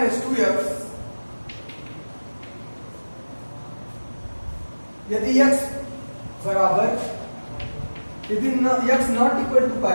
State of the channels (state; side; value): inverted; both; correlation -1.00